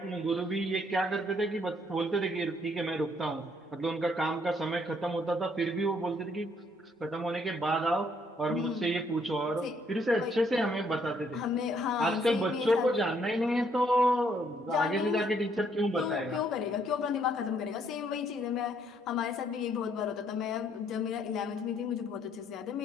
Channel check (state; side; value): normal; both; correlation 0.68